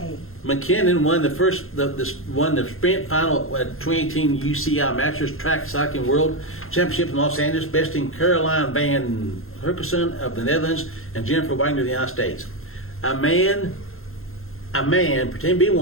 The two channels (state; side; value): late; right; 0.61 ms